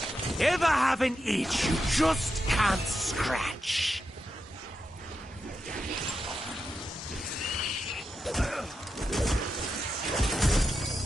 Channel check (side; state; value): both; normal; correlation 0.87